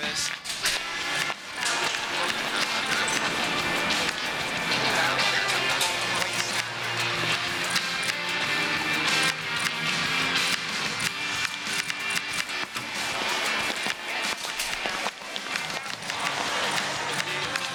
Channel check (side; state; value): both; identical; correlation 1.00